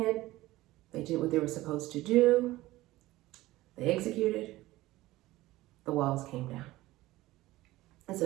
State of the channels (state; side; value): quieter; left; 17.6 dB